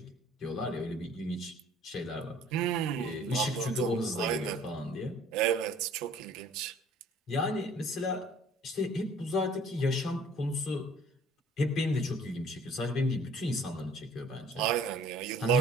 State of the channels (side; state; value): both; normal; correlation 0.53